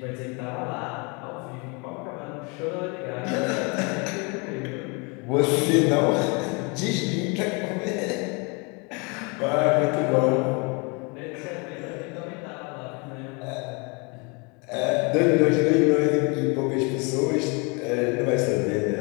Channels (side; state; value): right; quieter; 31.1 dB